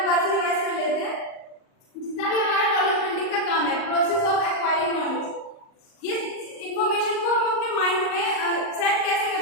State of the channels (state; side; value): late; right; 38 ms